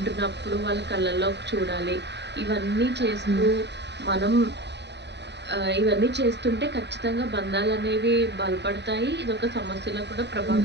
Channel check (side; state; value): left; late; 0.50 ms